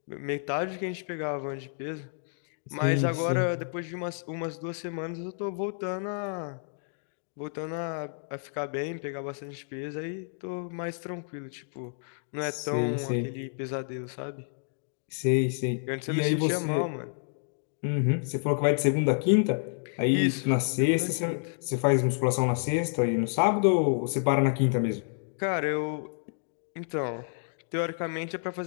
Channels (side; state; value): right; silent; digital silence